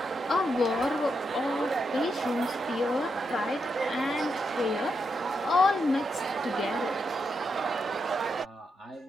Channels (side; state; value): both; normal; correlation 0.83